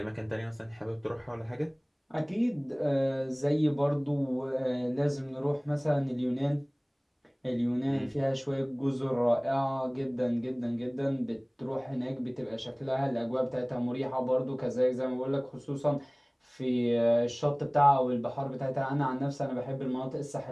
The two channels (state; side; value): identical; both; correlation 1.00